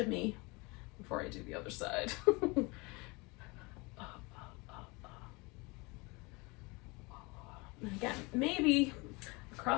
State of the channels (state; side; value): quieter; right; 26.7 dB